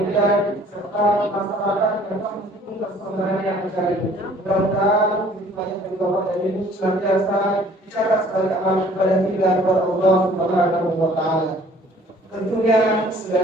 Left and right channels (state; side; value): normal; both; correlation 0.55